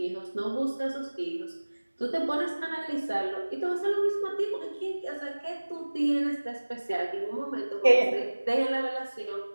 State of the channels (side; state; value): both; inverted; correlation -1.00